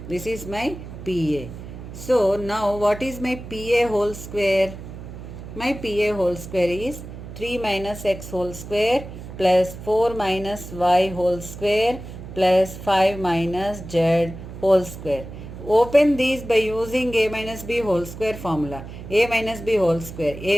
This is my PA. So now what is my PA whole square? My PA whole square is 3 minus x whole square plus 4 minus y whole square plus 5 minus z whole square. Open these by using a minus b whole square formula. A minus b whole square,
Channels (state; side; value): noise; right; hum, 12 dB below the sound